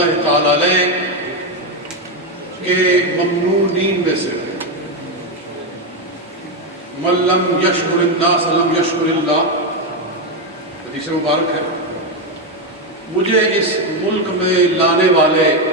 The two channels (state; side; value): normal; both; correlation 0.08